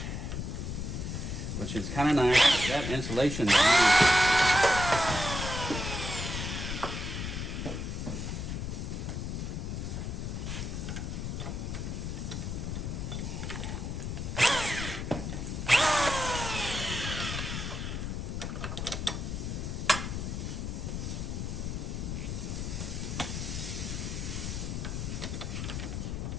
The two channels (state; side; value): noise; left; rumble, 3 dB below the sound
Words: which is kind of nice. That insulation is nice.